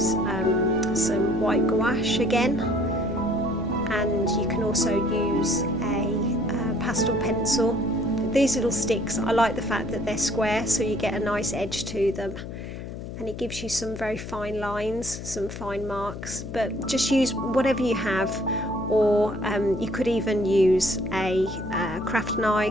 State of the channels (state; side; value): noise; left; hum, 9 dB below the sound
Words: some white gouache again, and you can also use a pastel pencil. These little sticks, I like the fact that they're square, so you get a nice edge to them, and it gives you some very fine lines, some fine marks. But just use whatever you have, or you could even use a craft